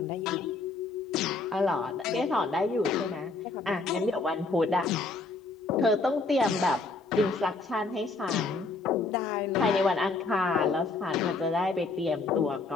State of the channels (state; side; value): quieter; right; 3.7 dB